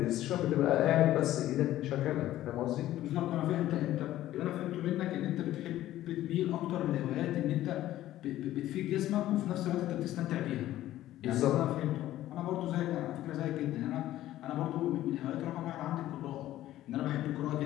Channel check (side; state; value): right; quieter; 14.1 dB